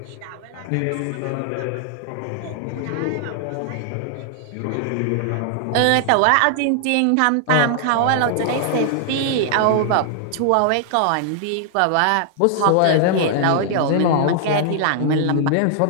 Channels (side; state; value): both; different; correlation -0.01